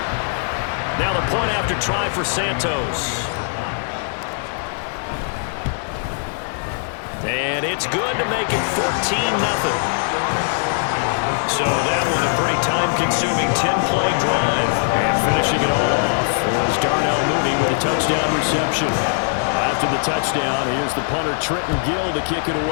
Now the point after try for Santos. And it's good to make it 14-0. So that was a pretty time-consuming 10-play drive. And finishing it all off was Darnell Mooney with a touchdown reception. After the touchdown, here's the punter Trenton Gill to kick it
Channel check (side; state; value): right; silent; 56 dB below the other